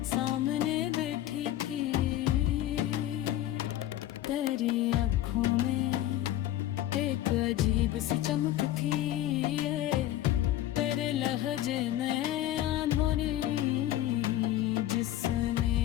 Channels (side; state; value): right; quieter; 13.5 dB